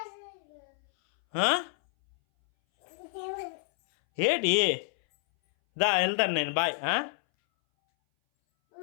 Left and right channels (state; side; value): silent; right; 59 dB below the other